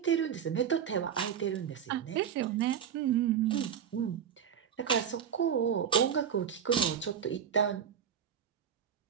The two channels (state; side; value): quieter; left; 8.3 dB